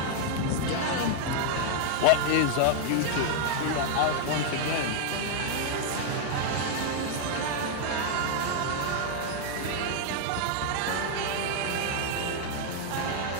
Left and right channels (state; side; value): different; both; correlation 0.00